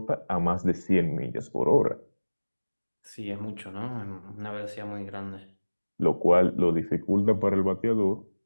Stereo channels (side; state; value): both; inverted; correlation -1.00